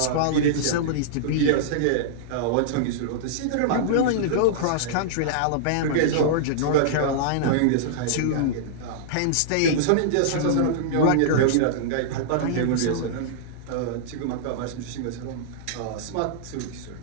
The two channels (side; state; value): both; different; correlation -0.02